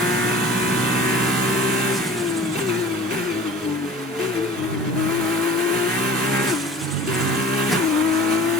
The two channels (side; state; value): both; normal; correlation 0.42